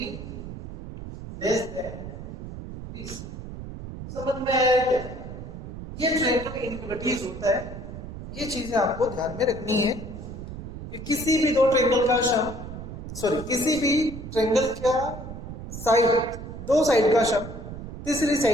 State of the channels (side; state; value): right; noise; rumble, 10 dB below the sound